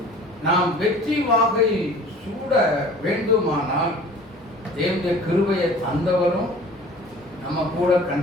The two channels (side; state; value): both; normal; correlation 0.46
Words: நாம் வெற்றி வாகை சூட வேண்டுமானால் தேவனுடைய கிருபையை தந்தவரும் நம்ம கூட